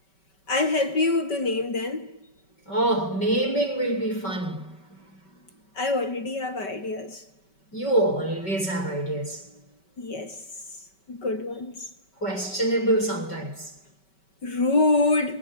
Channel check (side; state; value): right; late; 5.2 ms